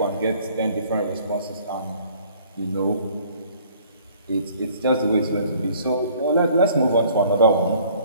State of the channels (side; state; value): both; inverted; correlation -0.56